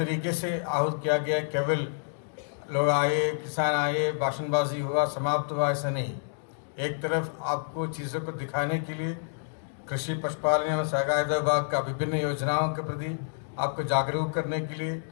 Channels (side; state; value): right; silent; digital silence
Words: से आहूत किया गया। केवल लोग आए, किसान आए, भाषणबाजी हुआ, समाप्त हुआ, ऐसा नहीं। एक तरफ आपको चीज़ों को दिखाने के लिए कृषि पशुपालन एवं सहकारिता विभाग का विभिन्न योजनाओं के प्रति आपको जागरूक करने के लिए,